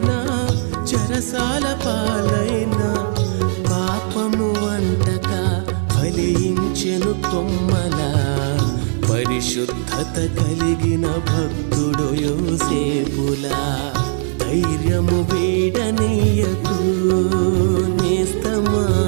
చెరసాల పాలైన పాపము అంటక ఫలించెను కొమ్మలా పరిశుద్ధత కలిగిన భక్తుడు యోసేపులా. ధైర్యము వీడనీయకు నేస్తమా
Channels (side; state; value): left; silent; digital silence